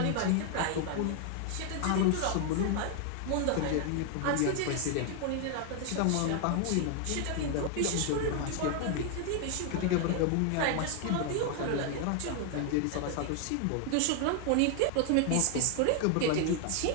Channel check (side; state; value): both; different; correlation 0.00